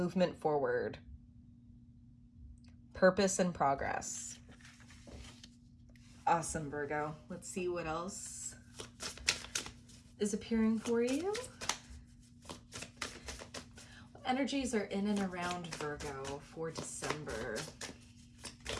forward. Purpose and progress. Awesome, Virgo. Let's see what else is appearing for you. What energies are in and around Virgo for December?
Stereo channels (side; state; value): both; identical; correlation 1.00